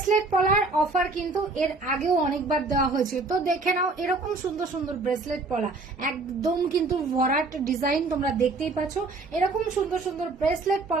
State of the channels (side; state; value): left; quieter; 3.5 dB